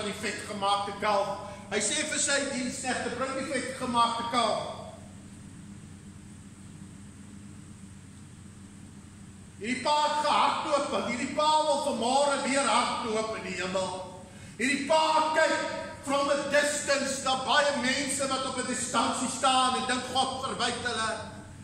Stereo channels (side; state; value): both; identical; correlation 1.00